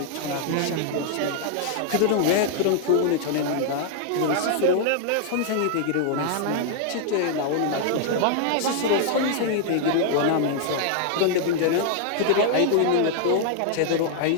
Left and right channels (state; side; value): different; both; correlation 0.00